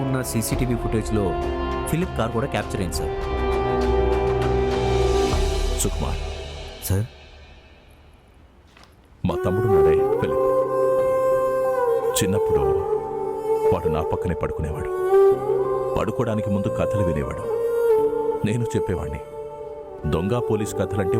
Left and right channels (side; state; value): both; identical; correlation 1.00